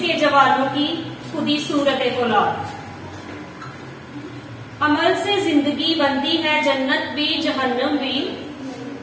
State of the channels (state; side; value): identical; both; correlation 1.00